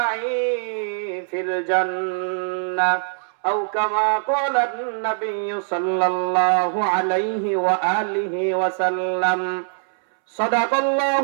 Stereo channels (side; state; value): left; silent; 64 dB below the other